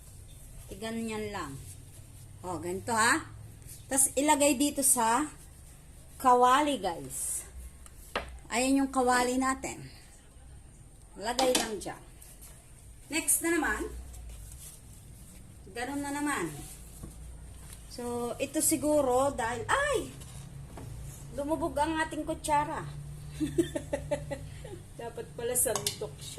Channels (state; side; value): identical; both; correlation 1.00